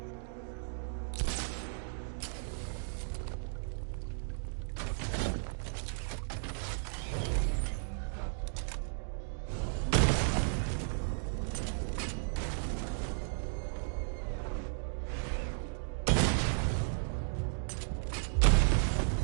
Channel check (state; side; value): silent; left; digital silence